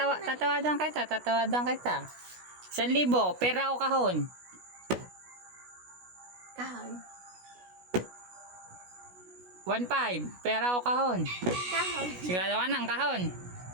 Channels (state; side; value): late; left; 16 ms